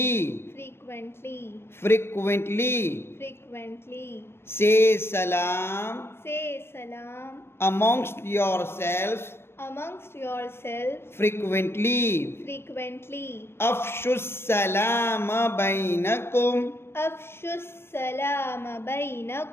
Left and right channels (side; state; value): right; late; 0.12 ms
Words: Frequently. Frequently. Frequently. Say salam. Say salam. Amongst yourselves. Amongst yourselves. Frequently. Frequently. Afshus salam bainakum. Afshus salam